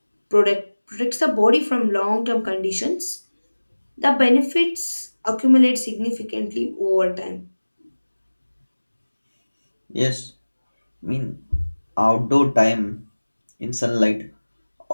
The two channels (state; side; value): inverted; both; correlation -1.00